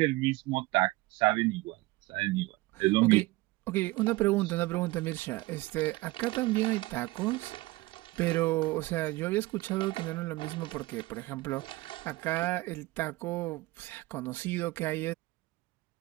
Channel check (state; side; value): quieter; left; 20.5 dB